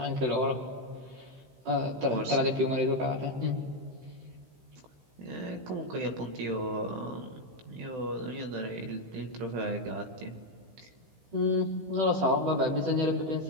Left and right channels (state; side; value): late; left; 16 ms